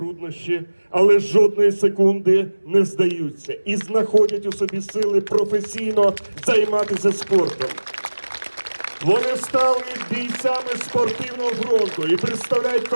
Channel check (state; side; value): inverted; both; correlation -1.00